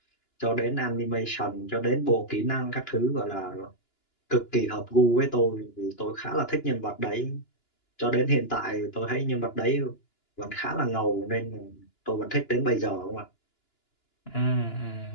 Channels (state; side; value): late; right; 2.9 ms